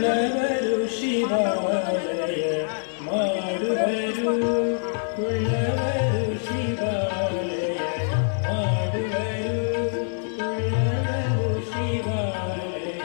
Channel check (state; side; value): silent; right; digital silence